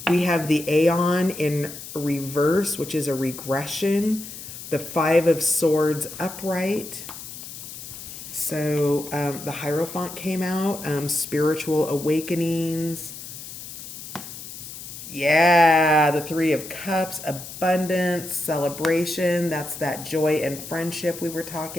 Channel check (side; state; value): left; noise; hiss, 12 dB below the sound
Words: We have the Aeon in reverse, which is a regression. The Five of Swords upright. So the Hierophant came out, spiritual awakenings. Yeah, the Three of Cups, abundance, celebration. That's that joy and friendship we were